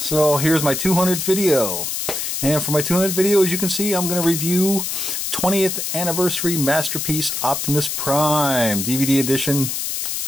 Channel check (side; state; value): left; noise; hiss, 3 dB below the sound